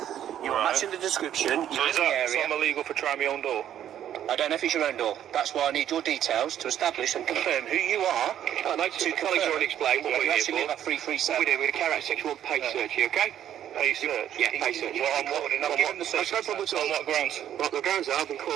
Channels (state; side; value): quieter; left; 10.7 dB